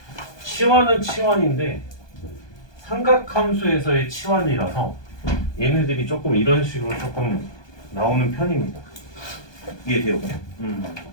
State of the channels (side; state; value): right; late; 1.2 ms